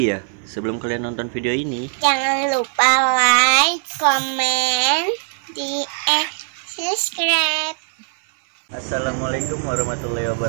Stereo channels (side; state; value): left; silent; 56 dB below the other